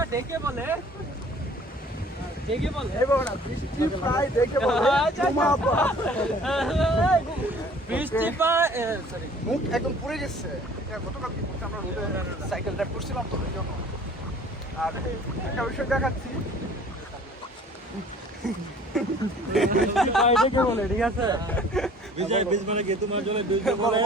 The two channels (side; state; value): both; normal; correlation 0.52